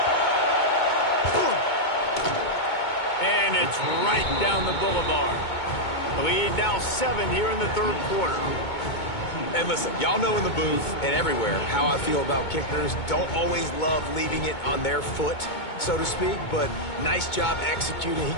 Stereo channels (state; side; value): late; right; 2.2 ms